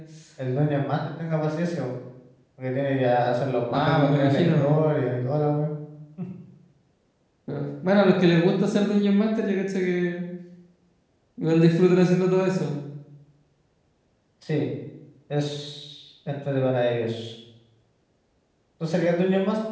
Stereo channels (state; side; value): identical; both; correlation 1.00